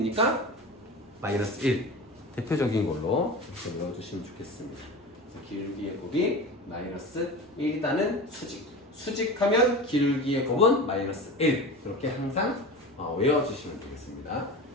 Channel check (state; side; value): normal; both; correlation 0.30